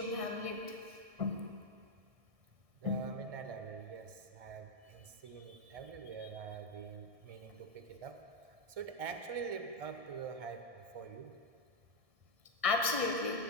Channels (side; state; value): left; late; 1.7 ms